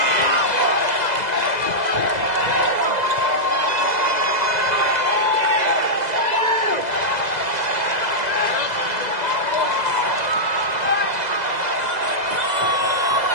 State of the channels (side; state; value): left; late; 2.0 ms